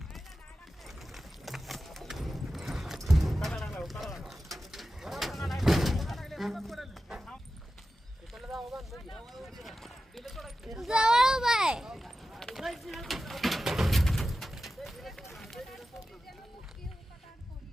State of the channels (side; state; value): both; normal; correlation 0.93